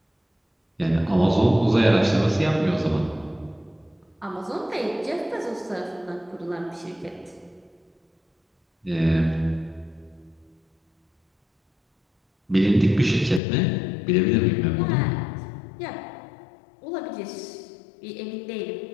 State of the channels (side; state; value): right; drops out; at 13.4 s